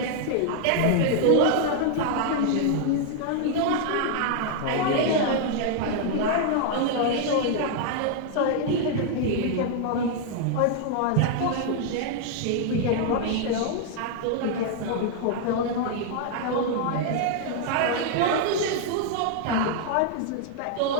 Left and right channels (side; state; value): both; different; correlation 0.00